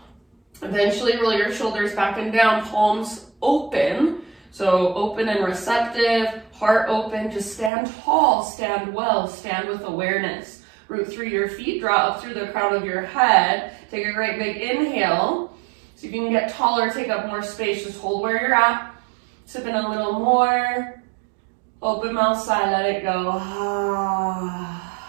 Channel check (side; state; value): left; drops out; at 7.7 s